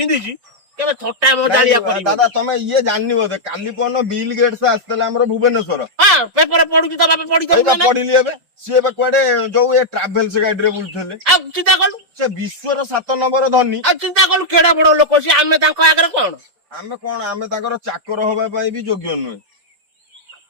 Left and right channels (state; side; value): late; left; 5.1 ms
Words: କେବେ ଥଟ୍ଟା ମଜାଳିଆ କରିବନି। ଦାଦା ତମେ ଇଏ ଜାଣିନି ବୋଧେ, କାଲି ପରଦିନ ବିଲ୍ ଗେଟ୍ସ ଆସିଥିଲେ ଆମର ଭୁବନେଶ୍ୱର। ହଁ, ପେପର ପଢୁଛି ତ ବାପା, ପଢିଲି ଏବେ। ସିଏ ଏବେ କୁଆଡେ ଯୋଉ ଏ ଟ୍ରାଭେଲ୍ସ ଗାଡିରେ ବୁଲୁଥିଲେ। ଆଉ ଚିନ୍ତା କଲୁ, ସେ ବିଶ୍ୱର 7 ନମ୍ବର ଧନୀ। ଆଉ ଚିନ୍ତା କଲୁ କେଡେ ବଡ ଲୋକ ସିଏ। ଆମେ ତାଙ୍କ ଆଗରେ କଣ? ଆମେ ତାଙ୍କର ଚାକର ହବା ପାଇଁ ବି ଯୋଗ୍ୟ ନୁହେଁ।